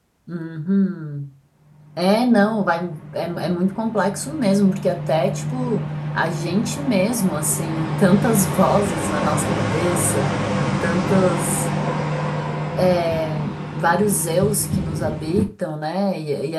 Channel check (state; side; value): identical; both; correlation 1.00